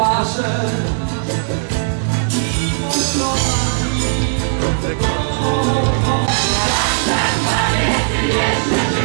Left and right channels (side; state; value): left; silent; digital silence